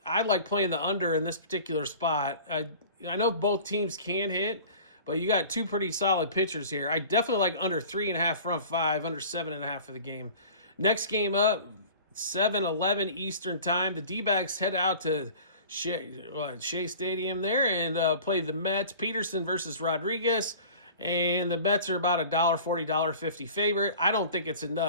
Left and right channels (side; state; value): both; inverted; correlation -0.42